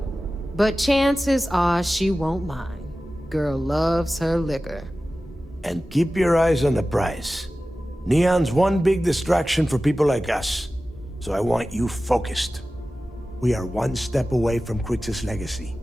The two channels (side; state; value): both; normal; correlation 0.95